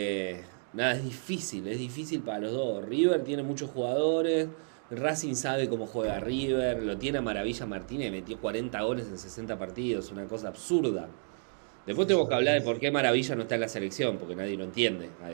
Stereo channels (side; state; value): left; silent; 57 dB below the other